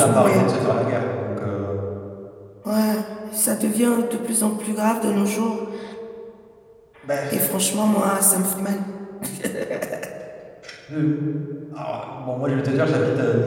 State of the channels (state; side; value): identical; both; correlation 1.00